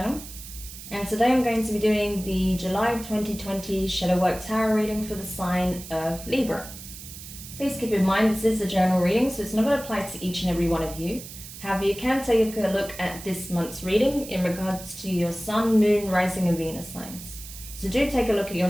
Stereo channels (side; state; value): right; noise; hiss, 13 dB below the sound